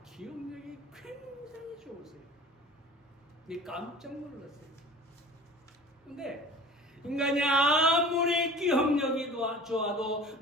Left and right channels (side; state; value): both; normal; correlation 0.42